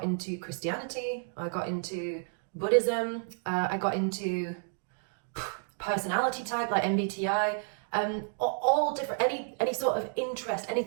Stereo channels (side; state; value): left; silent; 57 dB below the other